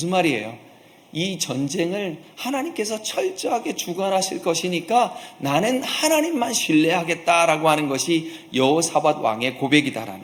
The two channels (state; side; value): identical; both; correlation 1.00